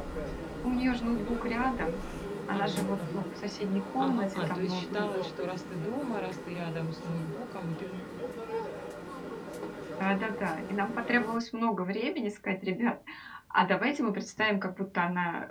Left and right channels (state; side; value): identical; both; correlation 1.00